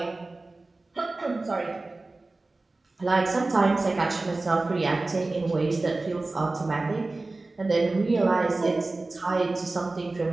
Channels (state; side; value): quieter; left; 3.2 dB